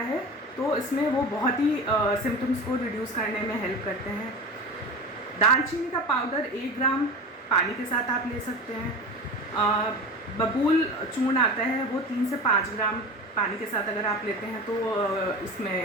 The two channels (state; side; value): normal; both; correlation 0.30